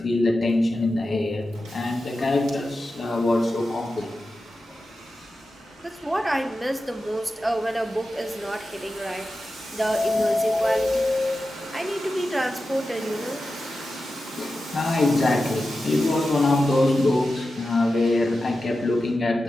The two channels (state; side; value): normal; both; correlation 0.92